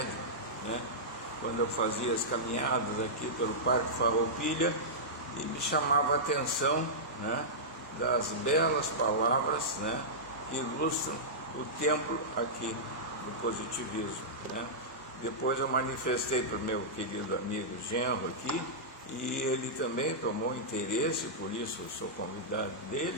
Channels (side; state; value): both; normal; correlation -0.13